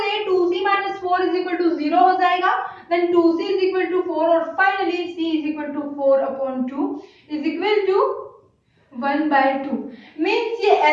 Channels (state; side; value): identical; both; correlation 1.00